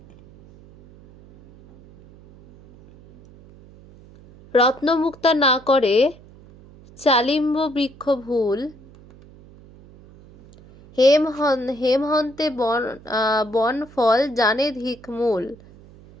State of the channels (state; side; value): noise; right; hum, 23 dB below the sound